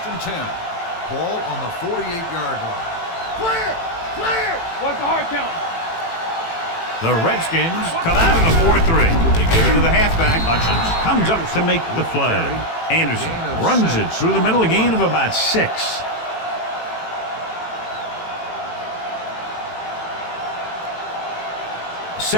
and 10. Ball on the 48-yard line. Clear. What's the hard count? The Redskins come out in a 4-3. They give it to the halfback. Hutchins comes up to make the play. Anderson runs it through the middle, a gain of about 6.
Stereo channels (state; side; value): late; right; 18 ms